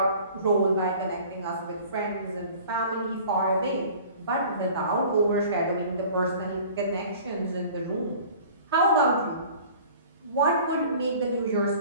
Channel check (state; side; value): inverted; both; correlation -0.46